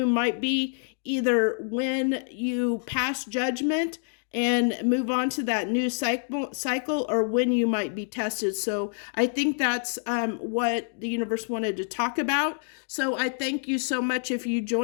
might be either when you pass judgment and move on to that new cycle, or when you might be tested. So I think that's what the universe wanted to talk about. So I thank you so much if you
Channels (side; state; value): right; silent; digital silence